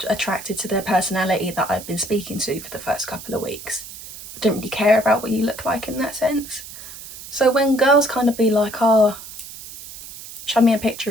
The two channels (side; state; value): right; noise; hiss, 14 dB below the sound